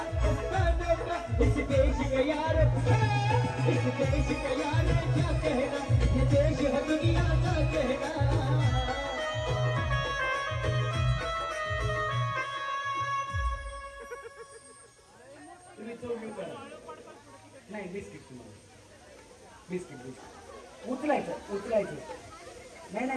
उस्तानों का. इस देश के यार, इस देश के यार क्या कहना. ये देश है दुनिया का कहना. तुम्ही चौकी करा. नाही बिस्किट तुम्हाला बिस्किट उचलायचं. नाही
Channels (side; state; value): both; identical; correlation 1.00